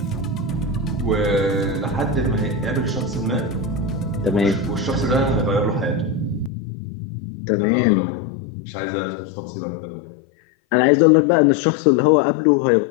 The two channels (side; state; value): right; drops out; at 6.5 s